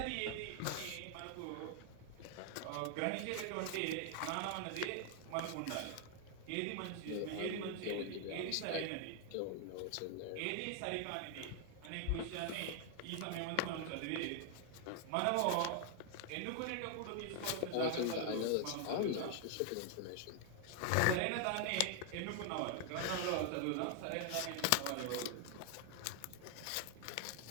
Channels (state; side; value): different; both; correlation 0.00